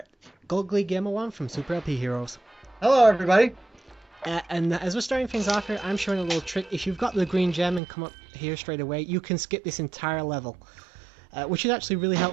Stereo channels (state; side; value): drops out; left; at 7.8 s